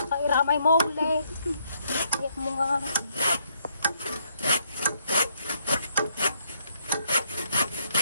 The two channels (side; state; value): both; inverted; correlation -0.71